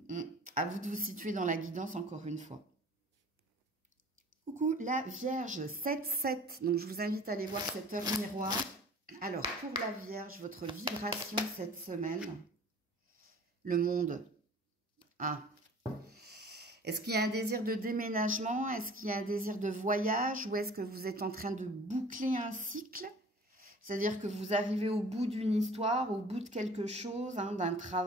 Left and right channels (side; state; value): both; normal; correlation 0.46